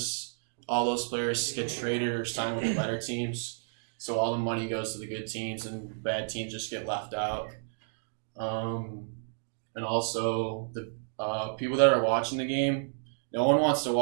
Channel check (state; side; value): silent; left; digital silence